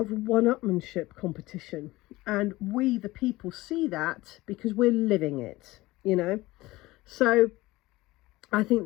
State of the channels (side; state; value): right; quieter; 19.3 dB